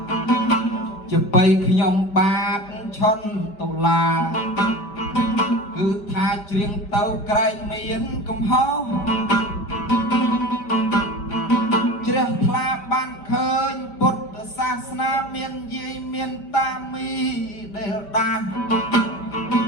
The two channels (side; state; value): right; late; 5.2 ms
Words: ជាបីខ្ញុំបាបឈន់តុលាគឺថាច្រៀងទៅក្រែងមានកំហុសជ្រះថ្លាបានឃើញពុទ្ធសាសនាមានយាយមានតាមីដែលដាស់